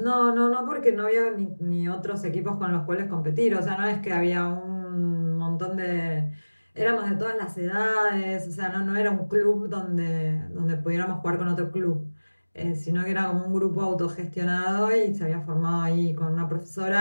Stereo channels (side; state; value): both; inverted; correlation -1.00